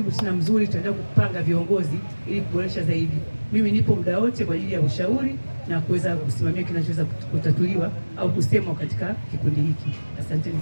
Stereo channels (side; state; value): both; inverted; correlation -1.00